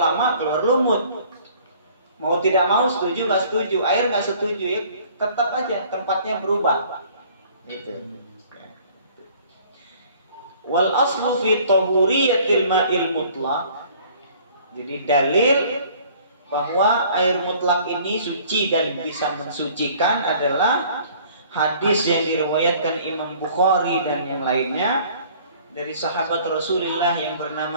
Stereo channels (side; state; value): both; inverted; correlation -0.54